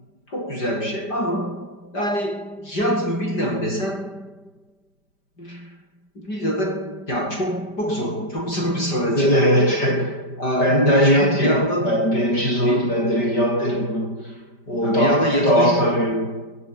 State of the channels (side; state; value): right; late; 5.1 ms